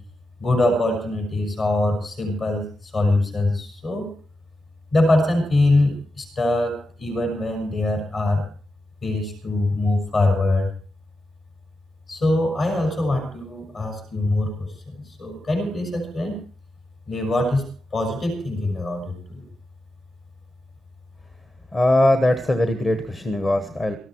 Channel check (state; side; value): normal; both; correlation 0.89